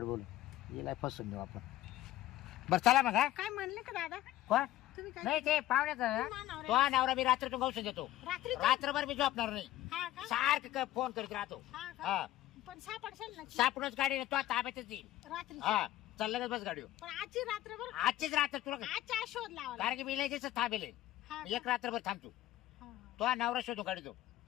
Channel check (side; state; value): right; quieter; 14.6 dB